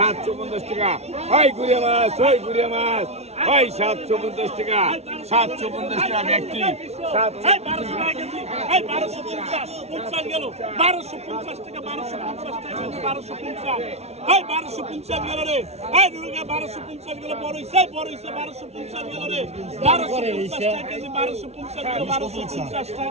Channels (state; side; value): late; left; 0.31 ms